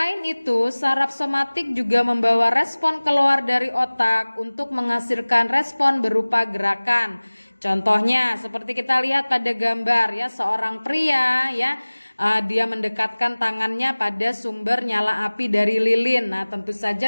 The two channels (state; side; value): inverted; both; correlation -1.00